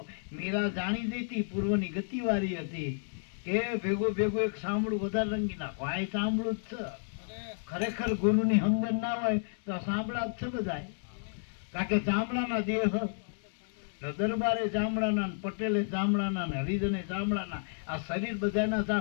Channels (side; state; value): right; silent; digital silence